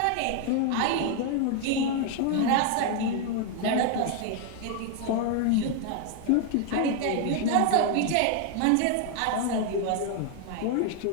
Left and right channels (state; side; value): different; both; correlation 0.00